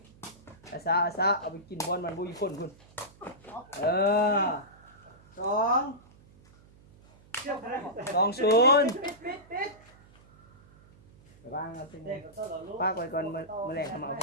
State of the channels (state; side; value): noise; right; hum, 26 dB below the sound